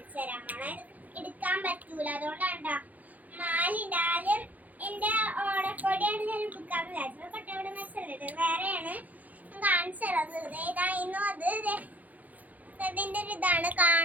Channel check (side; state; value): left; late; 0.079 ms